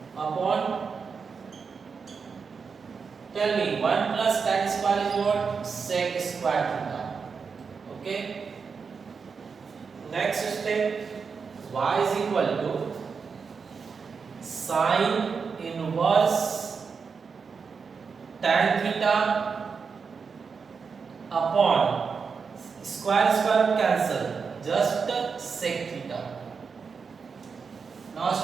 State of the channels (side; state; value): left; quieter; 5.5 dB